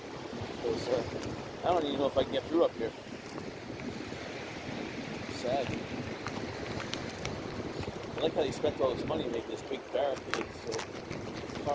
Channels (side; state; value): both; identical; correlation 1.00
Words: Because I don't even know if I can get through up here. Sad. I like how they spent all this money to make this big barricade so